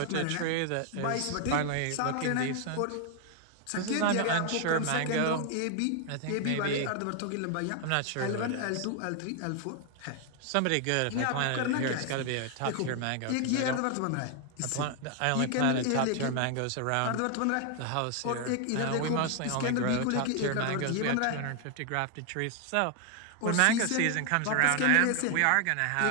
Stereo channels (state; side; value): different; both; correlation 0.00